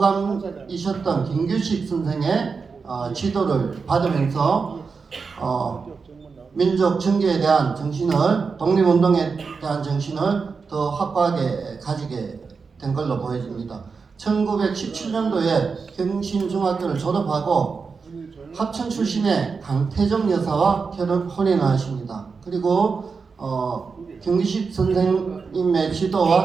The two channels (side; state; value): left; quieter; 5.0 dB